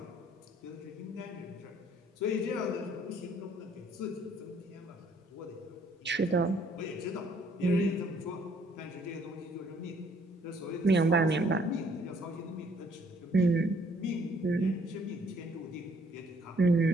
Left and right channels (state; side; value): normal; both; correlation 0.63